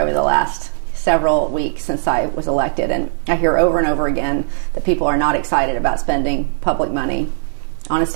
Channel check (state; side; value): silent; left; digital silence